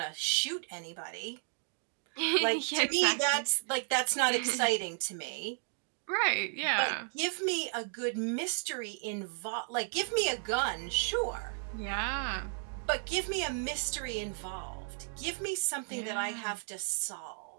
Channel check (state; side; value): silent; left; 55 dB below the other